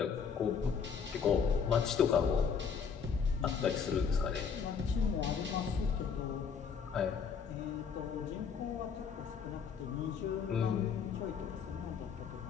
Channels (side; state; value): right; quieter; 6.4 dB